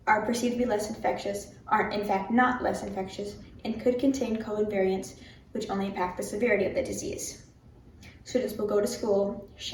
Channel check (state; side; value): identical; both; correlation 1.00